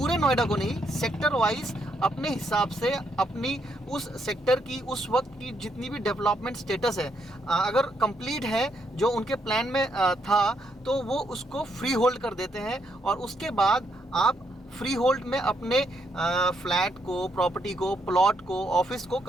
नोएडा को नहीं, सेक्टर वाइज अपने हिसाब से अपनी उस सेक्टर की उस वक्त की जितनी भी डेवलपमेंट स्टेटस है अगर कंप्लीट है जो उनके प्लान में था, तो वो उसको फ्री होल्ड कर देते हैं। और उसके बाद आप फ्री होल्ड में अपने फ्लैट को, प्रॉपर्टी को, प्लॉट को, ऑफिस को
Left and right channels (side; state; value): both; normal; correlation 0.76